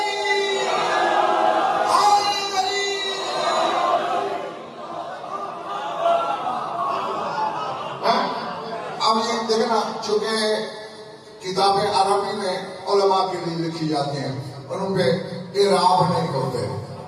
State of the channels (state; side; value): identical; both; correlation 1.00